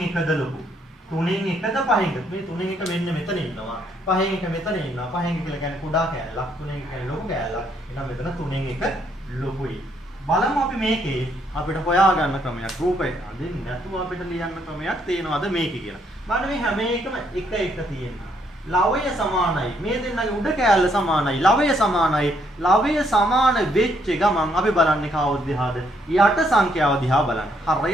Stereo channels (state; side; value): normal; both; correlation 0.71